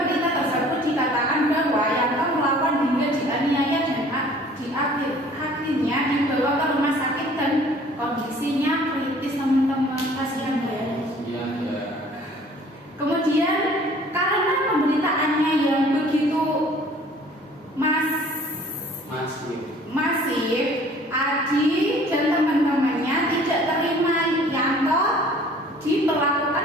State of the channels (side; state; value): both; normal; correlation 0.52